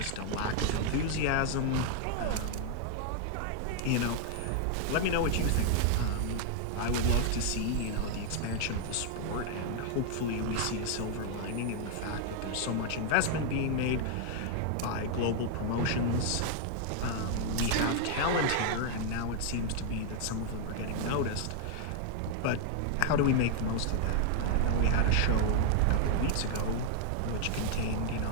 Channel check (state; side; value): different; both; correlation 0.00